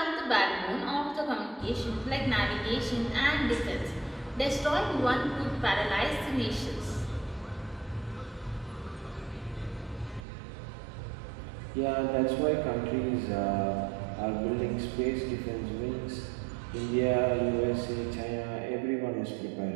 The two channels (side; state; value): left; drops out; at 10.2 s